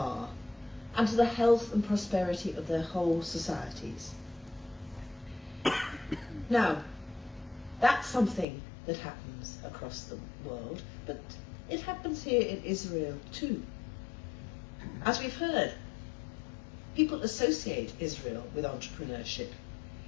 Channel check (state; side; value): drops out; right; at 8.5 s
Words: and to the health and prosperity of their whole societies. Now, that's something that happens across the world, but it happens here in Israel too. As we've heard, people associate Israel with entrepreneurship